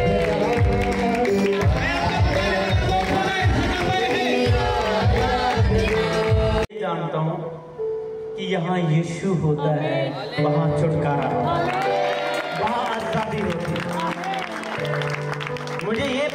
जानता हूँ कि यहाँ यीशु होता है, वहाँ छुटकारा, वहाँ आजादी होती है। मुझे ये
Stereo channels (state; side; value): identical; both; correlation 1.00